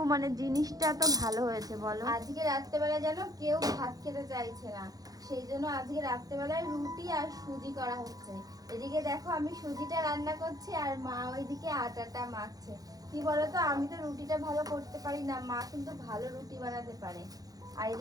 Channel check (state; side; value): late; left; 0.18 ms